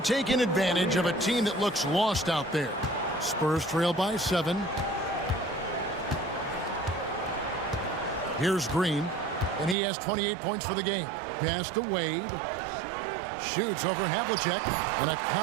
advantage of a team that looks lost out there. Spurs trail by 7. Here's Green, and he has 28 points for the game. Pass to Wade. Shoots over Havlicek, and a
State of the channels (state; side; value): drops out; left; at 9.8 s